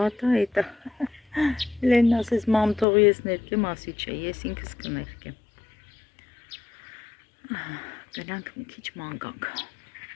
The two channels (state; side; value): drops out; right; at 2.9 s